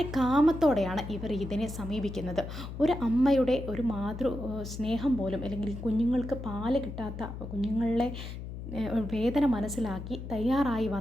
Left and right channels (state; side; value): noise; left; hum, 9 dB below the sound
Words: കാമത്തോടെയാണ് ഇവർ ഇതിനെ സമീപിക്കുന്നത്. ഒരു അമ്മയുടെ ഒരു മാതൃ സ്നേഹം പോലും അല്ലെങ്കിൽ കുഞ്ഞുങ്ങൾക്ക് പാല് കിട്ടാത്ത കുഞ്ഞുങ്ങളെ വേദന മനസ്സിലാക്കി തയ്യാറായി